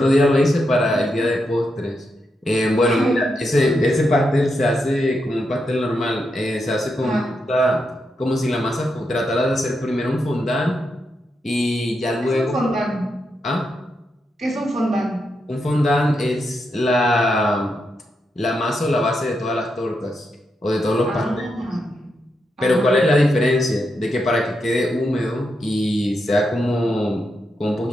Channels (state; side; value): normal; both; correlation 0.84